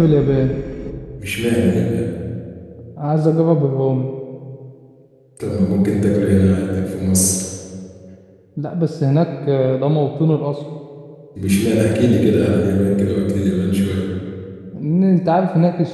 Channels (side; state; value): both; identical; correlation 1.00